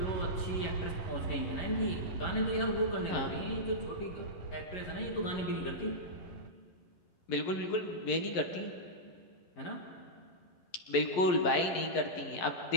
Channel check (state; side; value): late; right; 11 ms